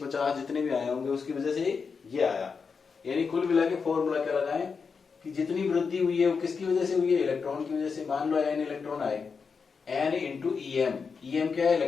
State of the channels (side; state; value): right; quieter; 5.4 dB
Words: 50 जितने भी आए होंगे उसकी वजह से ये आया। यानी कुल मिला के फॉर्मूला क्या लगाएं कि जितनी वृद्धि हुई है वो किसकी वजह से हुई है? इलेक्ट्रॉन की वजह से। मान लो n इलेक्ट्रॉन आए, n इंटू EM। EM क्या है?